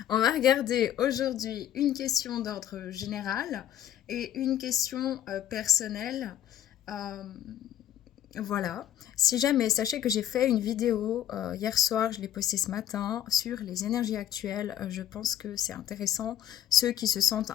On va regarder aujourd'hui une question d'ordre général et une question personnelle. Euh, voilà. Si jamais, sachez que j'ai fait une vidéo hier soir, je l'ai postée ce matin, sur les énergies actuelles. Je pense que c'est intéressant. Ceux qui se sentent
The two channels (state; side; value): quieter; right; 11.1 dB